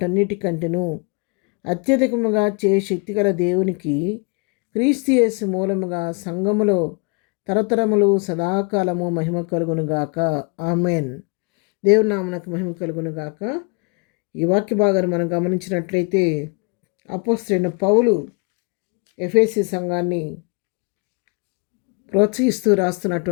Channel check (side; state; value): right; quieter; 32.2 dB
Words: అత్యధికముగా శక్తిగల దేవునికి క్రీస్తు యేసు మూలముగా సంఘములో తరతరములు సదాకాలము మహిమ కలుగునుగాక. ఆమెన్. దేవుని నామమునకు మహిమ కలుగునుగాక. ఈ వాక్య భాగాన్ని మనం గమనించినట్లయితే అపోస్తలుడైన పౌలు ఎఫెసీ సంఘాన్ని ప్రోత్సహిస్తూ